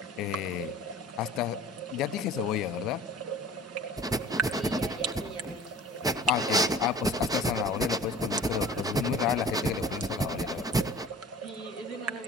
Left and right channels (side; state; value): both; normal; correlation 0.44